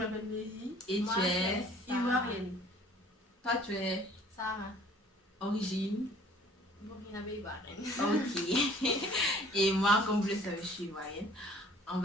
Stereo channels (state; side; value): normal; both; correlation 0.54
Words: Mélie. Et Moi, tu es Ivoirienne. Toi, tu es Sarah. origine. Burkinabé Ivoirienne. Ok. Et moi, comme vous le savez, je suis ivoirienne. On